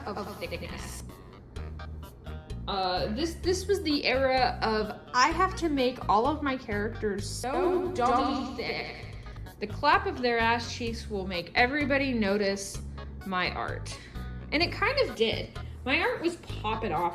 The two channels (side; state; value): both; identical; correlation 1.00